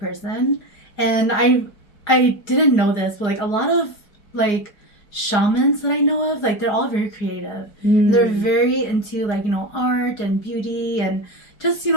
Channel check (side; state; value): right; late; 4.8 ms